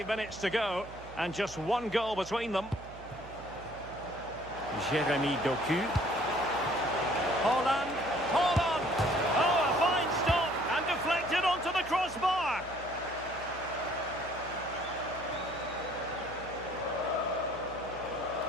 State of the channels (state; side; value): noise; right; hum, 16 dB below the sound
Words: minutes to go and just one goal between them. Jeremy Doku. Holland. Holland. Oh, a fine stop and deflected onto the crossbar.